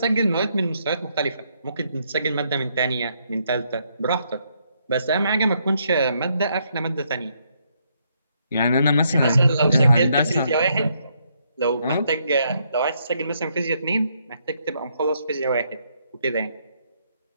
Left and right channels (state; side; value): inverted; both; correlation -0.74